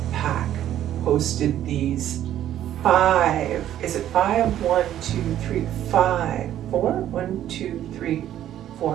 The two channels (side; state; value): left; quieter; 11.8 dB